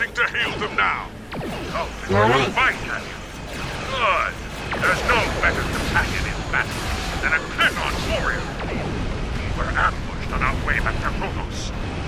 to hail them now. Oh, we'll find them. Good. There's no better companion in battle than a Klingon warrior. We were ambushed on our way back to Kronos.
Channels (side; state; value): both; identical; correlation 1.00